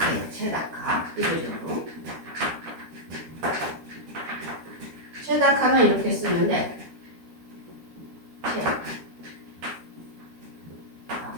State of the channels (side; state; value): left; late; 13 ms